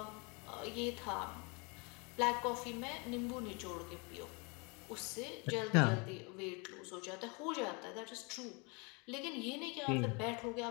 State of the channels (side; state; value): right; quieter; 31.0 dB